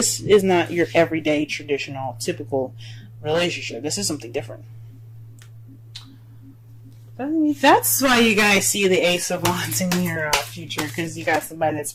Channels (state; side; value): identical; both; correlation 1.00